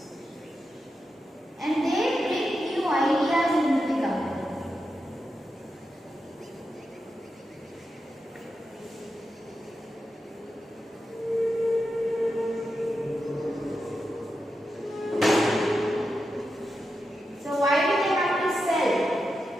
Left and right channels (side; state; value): both; normal; correlation 0.88